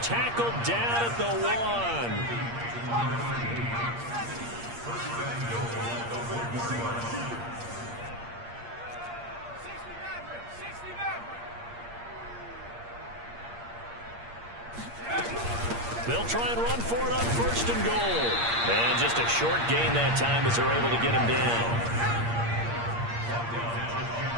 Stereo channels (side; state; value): left; late; 8.6 ms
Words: Tackled down at the 1. They'll try and run for it on 1st and goal. And just a short gain that time as they're able to get him down.